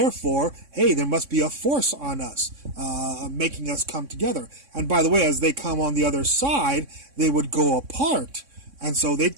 hey, there must be a force on us, making us come together. And by the way, as they come on the other side, they would go apart. And so they'd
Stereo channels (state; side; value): late; left; 3.6 ms